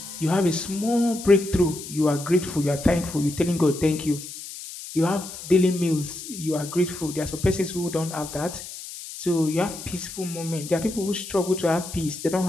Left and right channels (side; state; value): left; noise; hiss, 11 dB below the sound